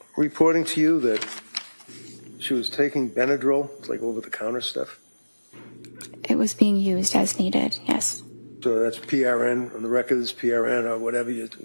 reporting to you that she was taking Benadryl, like over-the-counter stuff? It was being used as needed, yes. So that's PRN, on the record is PRN or whatever, you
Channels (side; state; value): both; inverted; correlation -1.00